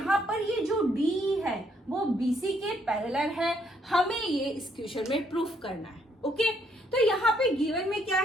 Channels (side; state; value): both; normal; correlation 0.70